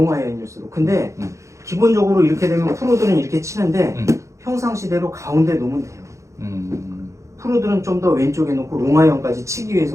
아이언일수록. 근데 기본적으로 이렇게 되면 프로들은 이렇게 치는데 평상시대로 가운데 놓으면 돼요. 프로들은 좀 더 왼쪽에 놓고 롱 아이언까지 치기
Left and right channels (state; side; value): late; left; 0.15 ms